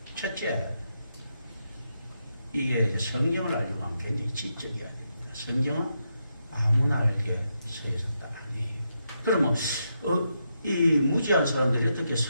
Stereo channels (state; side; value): inverted; both; correlation -0.83